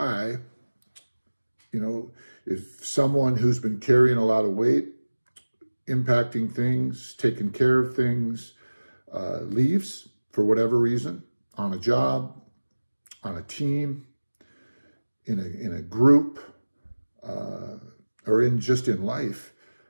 if someone who's been carrying a lot of weight, impacting things, taking care of things, leaves, for whatever reason, on a job, on a team, in a group, or in life,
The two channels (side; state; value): both; inverted; correlation -1.00